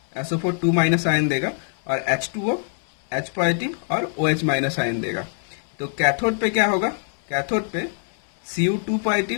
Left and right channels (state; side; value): silent; right; 63 dB below the other